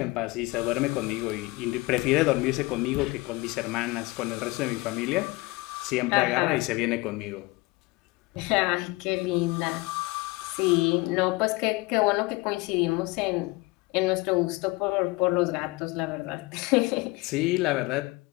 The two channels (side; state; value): right; quieter; 23.2 dB